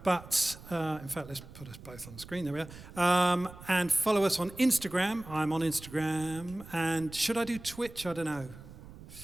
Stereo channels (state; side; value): noise; right; rumble, 17 dB below the sound